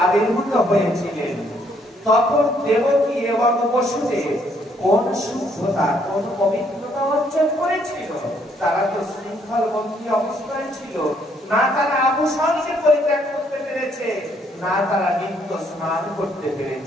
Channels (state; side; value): normal; both; correlation 0.69